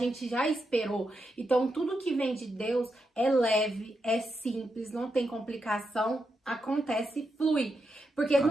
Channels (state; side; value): normal; both; correlation 0.84